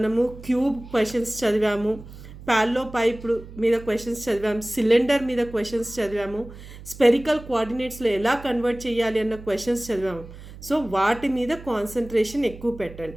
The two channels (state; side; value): noise; right; hum, 16 dB below the sound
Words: క్యూబ్ క్వశ్చన్స్ చదివాము, ప్యాల్లో పైప్ మీద క్వశ్చన్స్ చదివాము, సిలిండర్ మీద క్వశ్చన్స్ చదివాము, స్పెరికల్ కోఆర్డినేట్స్లో ఎలా కన్వర్ట్ చేయాలి అన్న క్వశ్చన్స్ చదివాము. సో వాటి మీద కాన్సన్ట్రేషన్ ఎక్కువ పెట్టండి.